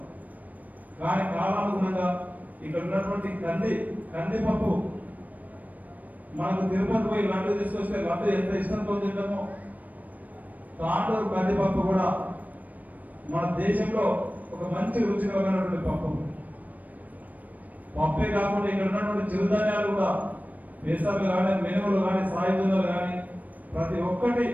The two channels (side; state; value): left; late; 0.077 ms